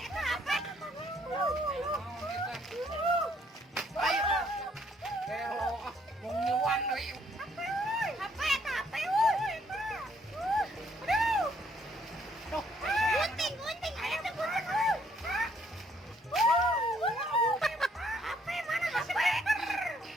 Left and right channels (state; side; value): normal; both; correlation 0.67